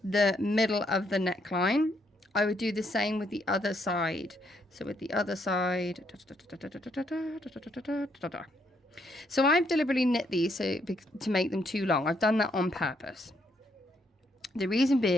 the middle of the neckline. I would do the same with the other side. So with the other side, so I've deliberately knit these to make them too long. I've done that on purpose. The reason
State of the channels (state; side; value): normal; both; correlation 0.74